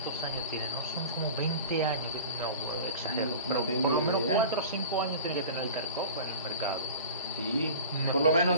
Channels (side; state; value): both; inverted; correlation -0.38